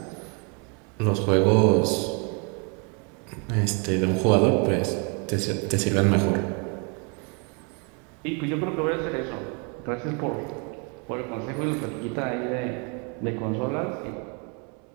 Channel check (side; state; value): left; quieter; 35.3 dB